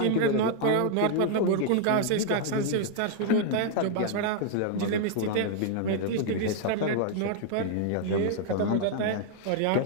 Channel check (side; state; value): both; different; correlation 0.00